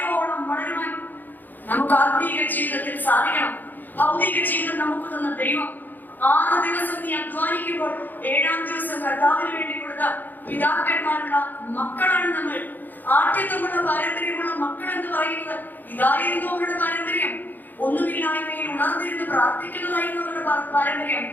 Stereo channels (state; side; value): late; right; 0.087 ms